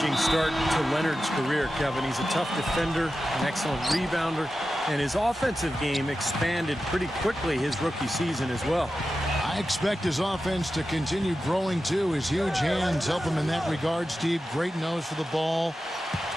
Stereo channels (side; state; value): both; normal; correlation 0.92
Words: start to Leonard's career, Kevin. He's a tough defender, an excellent rebounder, and his offensive game expanded pretty quickly his rookie season as well. I expect his offense to continue growing, too. His huge hands help him in that regard, Steve. Great nose for the ball,